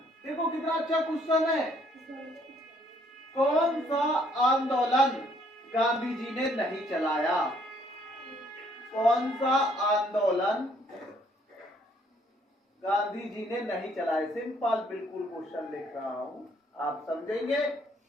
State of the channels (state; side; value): normal; both; correlation 0.65